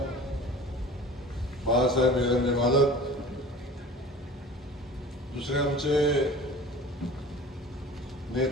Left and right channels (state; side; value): normal; both; correlation 0.41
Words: बाळासाहेब एरंडे मालक, दुसरे आमचे